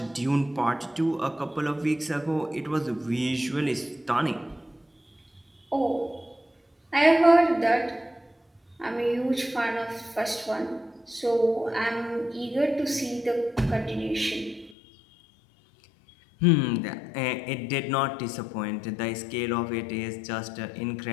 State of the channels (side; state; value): right; drops out; at 14.8 s